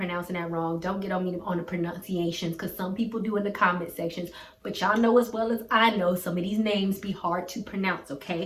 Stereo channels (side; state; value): both; identical; correlation 1.00